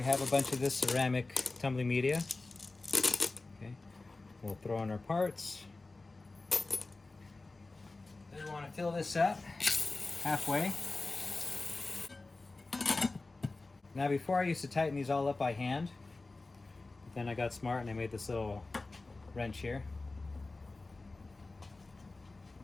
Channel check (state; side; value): quieter; right; 3.4 dB